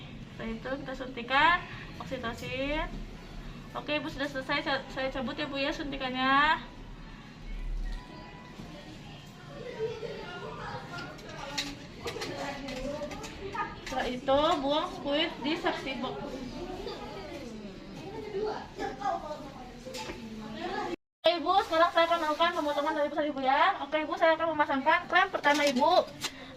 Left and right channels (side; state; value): both; identical; correlation 1.00